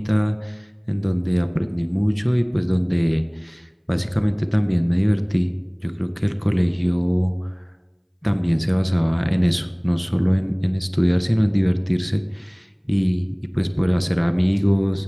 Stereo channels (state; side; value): identical; both; correlation 1.00